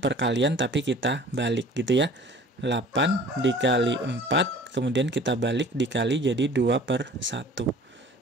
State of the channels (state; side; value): normal; both; correlation 0.47